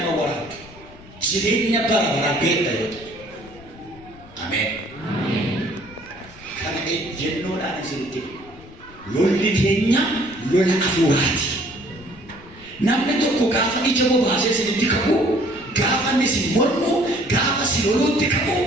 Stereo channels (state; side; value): noise; left; rumble, 21 dB below the sound